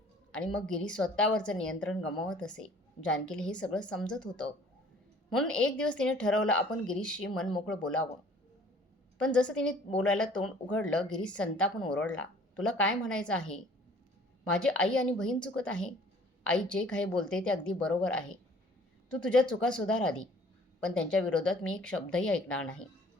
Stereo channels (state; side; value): normal; both; correlation 0.53